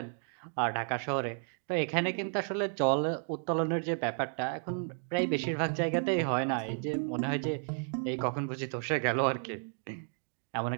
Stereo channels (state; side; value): silent; left; 56 dB below the other